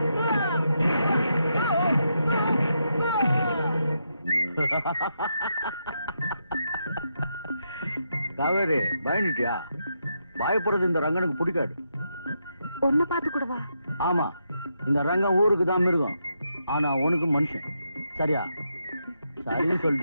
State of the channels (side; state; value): both; inverted; correlation -0.82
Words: காவேரி பயந்துட்டியா? பயப்படுறது இந்த ரங்கனுக்கு பிடிக்காது. ஒன்ன பார்த்து கூடவா? ஆமா, இந்த ரங்கம் ஊருக்கு தான் மிருகம், ஆனா உனக்கு மனுஷன். சரியா? சரின்னு